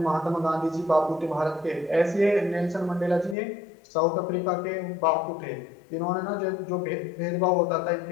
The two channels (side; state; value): right; drops out; at 3.4 s